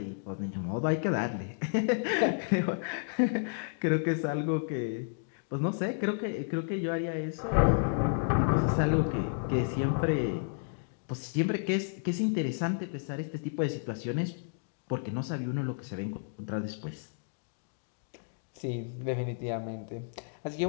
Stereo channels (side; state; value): right; silent; digital silence